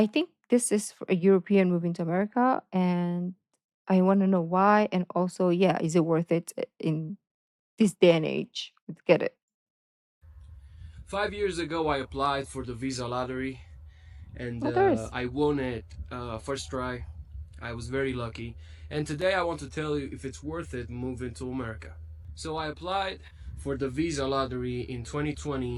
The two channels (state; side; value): identical; both; correlation 1.00